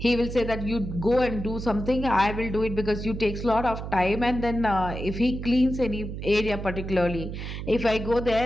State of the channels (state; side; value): noise; right; hum, 7 dB below the sound